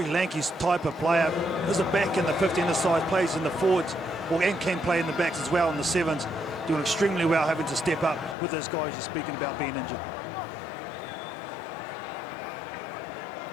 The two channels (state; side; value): drops out; right; at 8.3 s